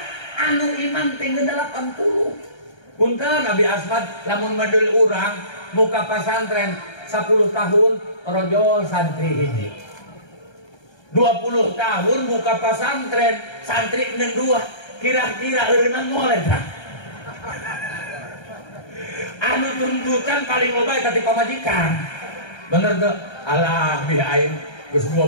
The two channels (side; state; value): right; late; 1.3 ms